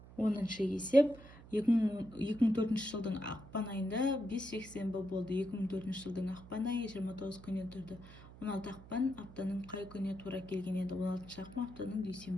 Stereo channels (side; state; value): right; noise; hum, 18 dB below the sound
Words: 10-шы есеп. 2004 жылдың ақпан айында 5 жексенбі болды. 2004 жылдың ақпан айы 29 күннен тұрды. 16 ақпан аптаның қай күніне тура келген еді? 16 ақпан аптаның